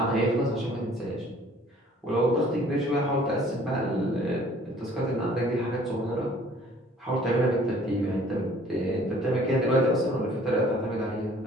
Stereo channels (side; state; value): both; normal; correlation 0.55